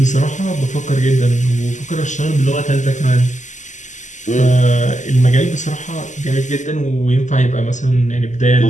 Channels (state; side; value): late; right; 0.35 ms